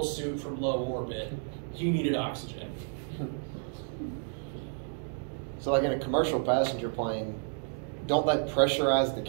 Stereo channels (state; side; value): silent; left; 57 dB below the other